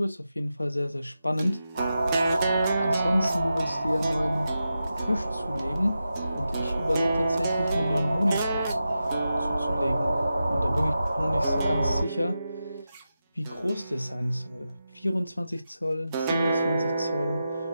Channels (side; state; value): both; inverted; correlation -0.90